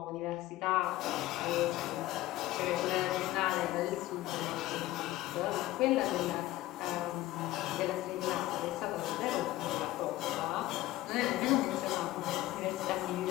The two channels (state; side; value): quieter; right; 16.3 dB